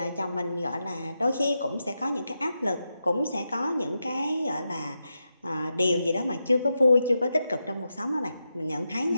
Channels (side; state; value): both; inverted; correlation -0.88